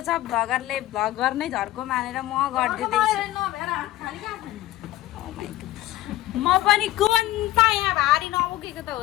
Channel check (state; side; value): quieter; right; 15.5 dB